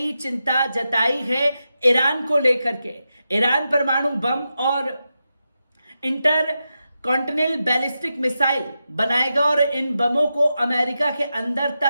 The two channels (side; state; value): both; inverted; correlation -0.89